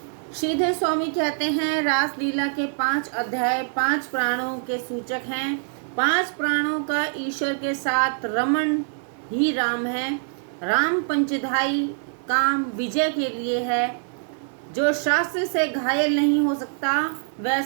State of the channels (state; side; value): silent; left; 62 dB below the other